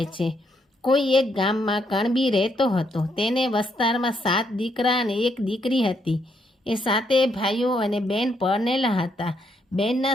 છે. કોઈ એક ગામમાં કણબી રહેતો હતો. તેને વસ્તારમાં 7 દીકરા અને 1 દીકરી હતી. એ 7 ભાઈઓ અને બેન પરણેલા હતા.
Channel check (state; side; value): normal; both; correlation 0.75